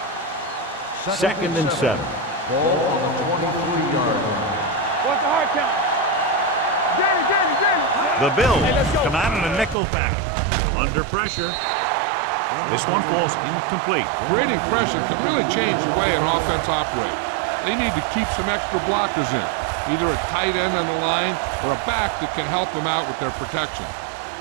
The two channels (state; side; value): drops out; left; at 9.8 s